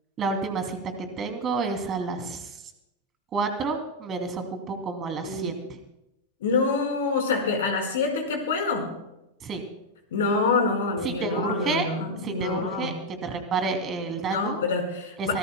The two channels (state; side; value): normal; both; correlation -0.01